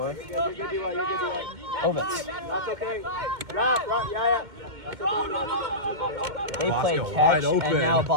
Ovitz. That's okay. They played Bosco catch, wide open. and now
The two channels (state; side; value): late; left; 2.1 ms